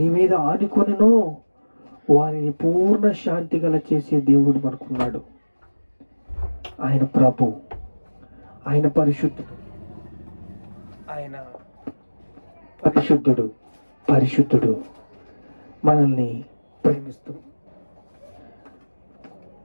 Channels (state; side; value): inverted; both; correlation -1.00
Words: మీద ఆనుకొనినో వారిని పూర్ణ శాంతి గల చేసే దేవుడు మనకున్నాడు. ఆయన ప్రభు, ఆయన పరిశుద్ధుడు, ఆయన పరిశుద్ధుడు మనల్ని ప్రేమిస్తున్నాడు.